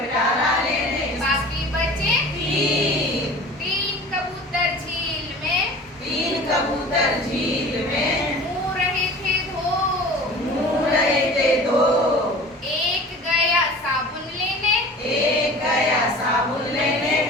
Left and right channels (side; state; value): both; normal; correlation 0.41